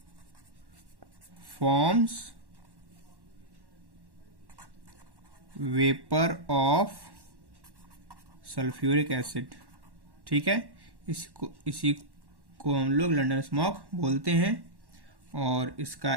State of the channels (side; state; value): left; late; 1.1 ms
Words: forms vapor of sulfuric acid, ठीक है। इसी को हम लोग लंदन स्मोक बोलते हैं। और इसका